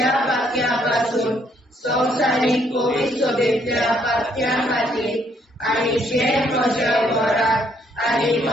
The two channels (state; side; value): normal; both; correlation 0.69